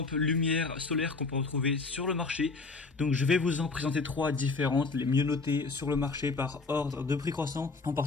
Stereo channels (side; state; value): right; quieter; 4.0 dB